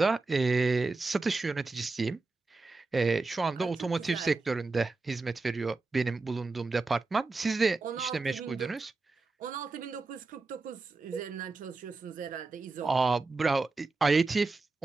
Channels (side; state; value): left; quieter; 3.7 dB